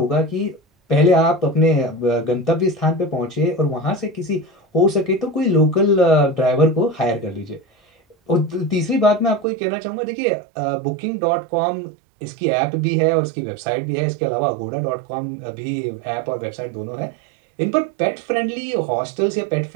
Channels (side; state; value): left; drops out; at 9.5 s